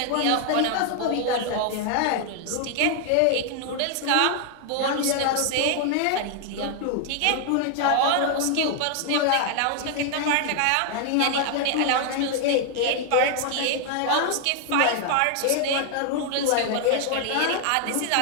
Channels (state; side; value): different; both; correlation 0.00